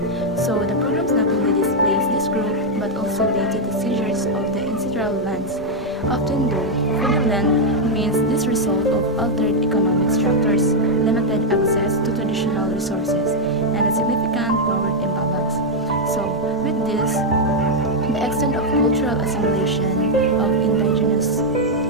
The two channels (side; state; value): both; normal; correlation -0.01